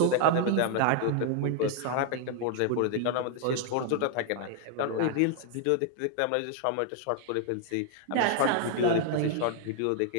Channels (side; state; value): both; different; correlation 0.00